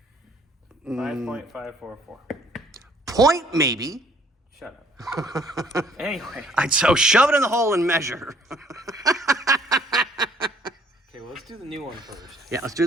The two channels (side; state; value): both; normal; correlation 0.60